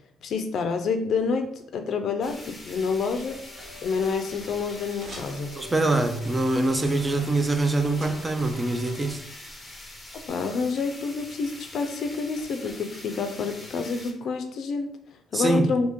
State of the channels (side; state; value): both; normal; correlation 0.76